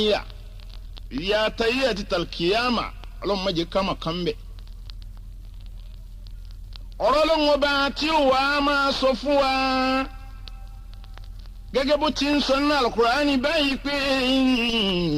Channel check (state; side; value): identical; both; correlation 1.00